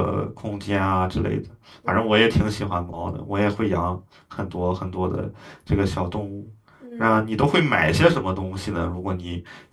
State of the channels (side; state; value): both; identical; correlation 1.00